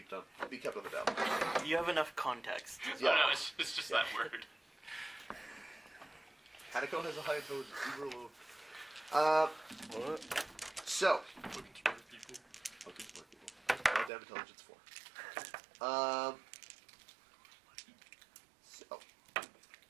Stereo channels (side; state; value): left; drops out; at 14.1 s